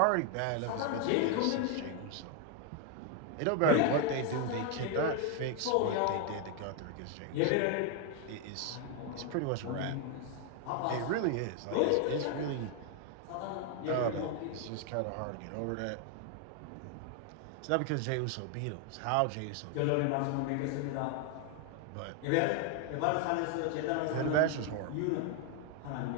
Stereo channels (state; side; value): different; both; correlation 0.01